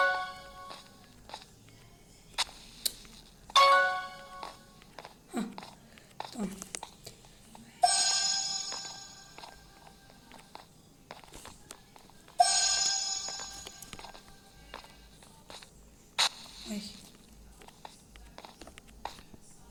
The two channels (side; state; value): both; identical; correlation 1.00